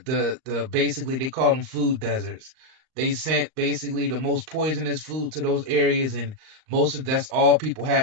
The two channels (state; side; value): late; left; 38 ms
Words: basically, they call them food deserts. They sent basically the most poisonous food to those areas, and that's all people